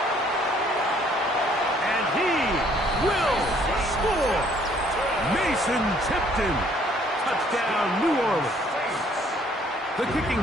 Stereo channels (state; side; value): normal; both; correlation 0.62